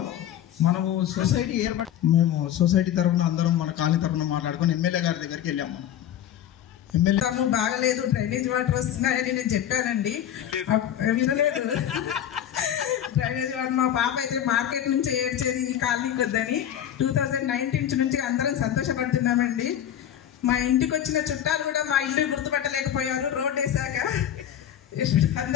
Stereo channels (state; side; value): quieter; right; 10.6 dB